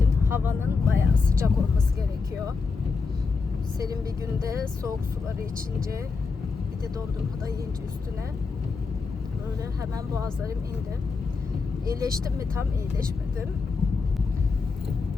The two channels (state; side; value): quieter; right; 4.7 dB